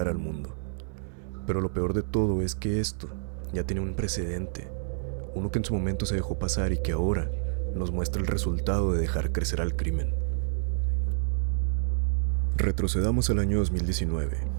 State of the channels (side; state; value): left; silent; digital silence